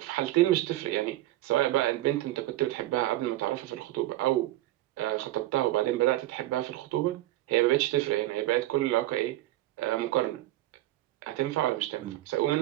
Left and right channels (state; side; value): quieter; left; 16.1 dB